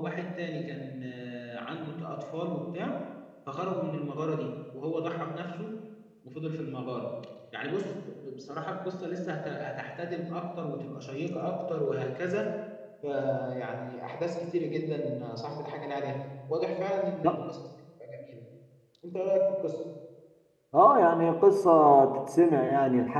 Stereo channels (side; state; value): both; identical; correlation 1.00